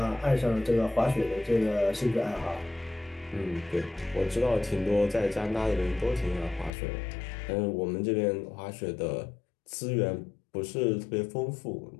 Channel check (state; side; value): drops out; right; at 6.7 s